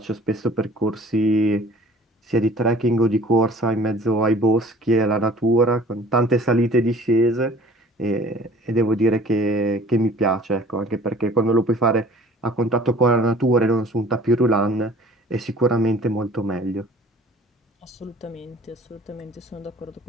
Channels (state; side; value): normal; both; correlation 0.50